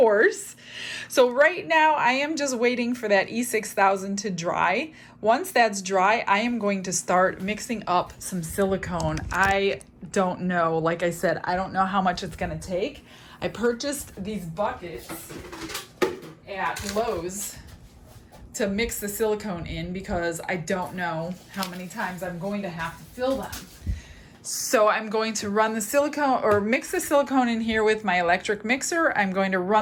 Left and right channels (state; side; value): identical; both; correlation 1.00